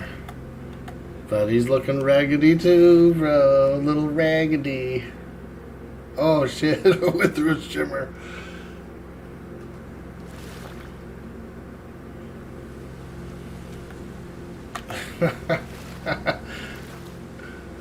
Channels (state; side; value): identical; both; correlation 1.00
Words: But he's looking raggedy too, bro. Little raggedy. Oh shit, I went through a shimmer.